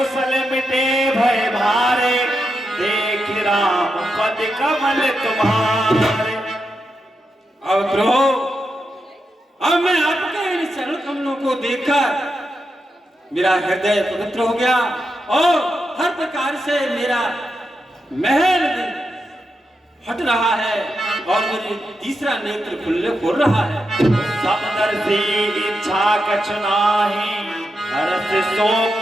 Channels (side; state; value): both; normal; correlation 0.86